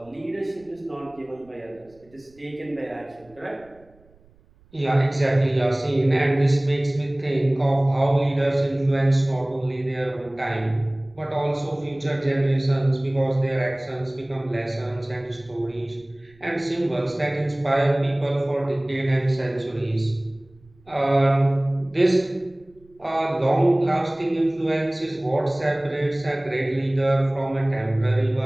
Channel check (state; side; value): noise; right; rumble, 30 dB below the sound